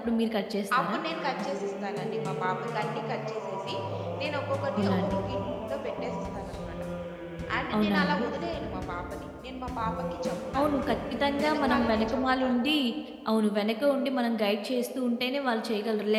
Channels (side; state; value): both; identical; correlation 1.00